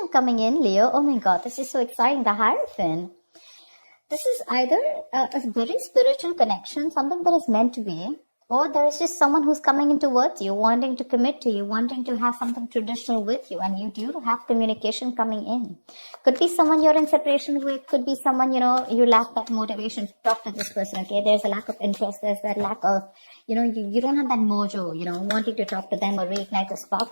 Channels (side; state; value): both; inverted; correlation -1.00